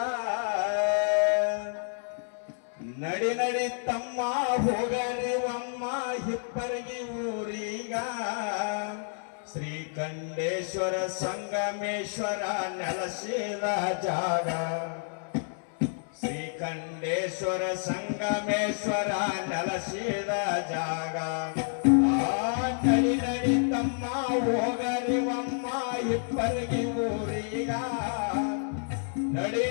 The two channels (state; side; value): silent; right; 58 dB below the other